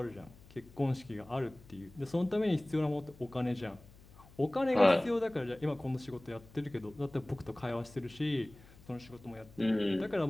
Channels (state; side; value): noise; left; hum, 22 dB below the sound